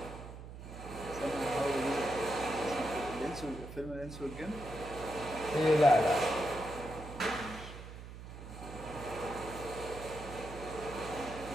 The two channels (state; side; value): noise; right; hum, 12 dB below the sound